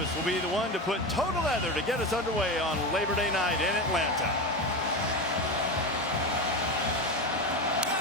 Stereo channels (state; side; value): normal; both; correlation 0.20